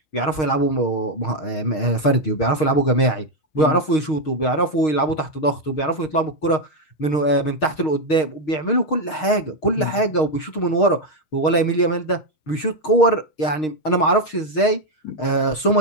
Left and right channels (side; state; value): right; late; 6.5 ms